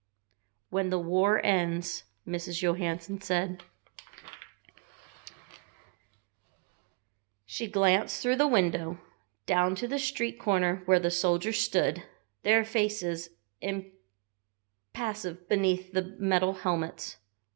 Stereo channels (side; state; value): left; quieter; 32.8 dB